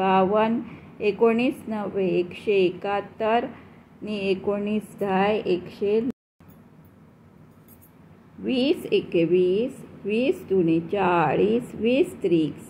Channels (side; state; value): both; identical; correlation 1.00